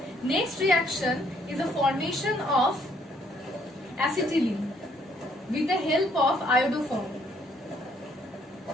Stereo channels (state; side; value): normal; both; correlation 0.67